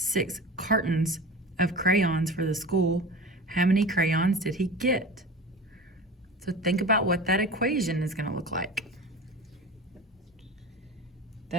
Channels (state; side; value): normal; both; correlation 0.34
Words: cartons of crayons for the school. How many crayons did he get? So think about what that equation is going to look like.